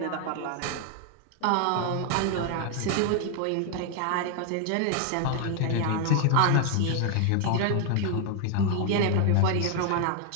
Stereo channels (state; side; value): different; both; correlation 0.00